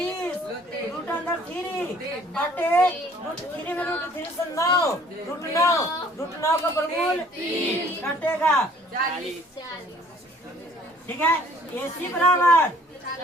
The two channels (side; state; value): both; normal; correlation 0.56